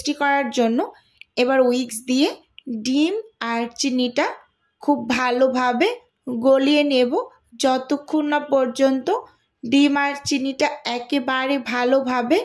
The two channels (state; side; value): identical; both; correlation 1.00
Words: করার জন্য। এবার উইক্স দিয়ে ডিম আর চিনিটা খুব ভালোভাবে গলিয়ে নেব, যতক্ষণ না পর্যন্ত ডিম আর চিনিটা একেবারে ভালোভাবে